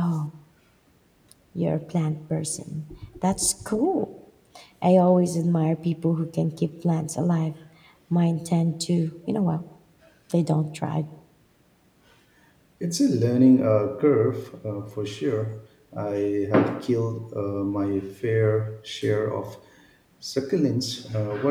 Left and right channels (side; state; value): both; identical; correlation 1.00